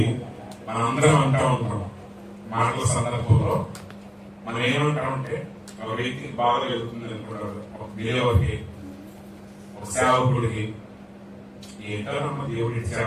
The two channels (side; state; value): both; identical; correlation 1.00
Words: మనందరం అంటా ఉంటాం మాటల సందర్భంలో, మనం ఏమంటామంటే ఒక వ్యక్తికి బాధ వెళ్తుంది అనుకుంటారు, ఒక బిలేవర్కి, ఒక సేవకుడికి, ఏంటో నమ్మ దేవుడు ఇచ్చి